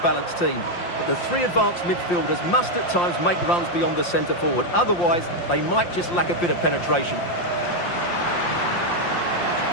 team. But the three advanced midfielders must at times make runs beyond the centre forward. Otherwise, they might just lack a bit of penetration.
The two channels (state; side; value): late; right; 5.7 ms